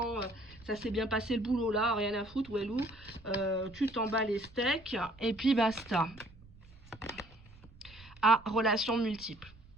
ça s'est bien passé le boulot là, rien à foutre, Wellou, tu t'en bats les steaks, et puis basta. Ah, relations multiples.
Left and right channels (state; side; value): noise; right; rumble, 22 dB below the sound